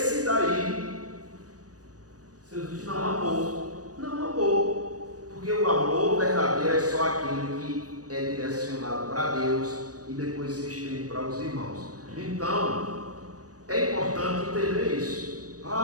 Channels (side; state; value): left; late; 0.67 ms